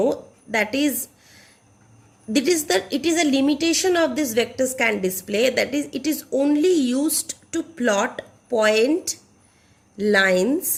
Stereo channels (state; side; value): identical; both; correlation 1.00